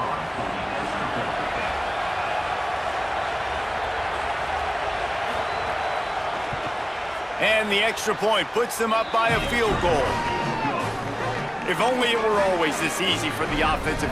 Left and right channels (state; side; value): identical; both; correlation 1.00